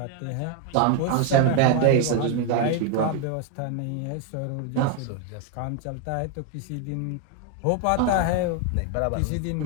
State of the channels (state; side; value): different; both; correlation 0.01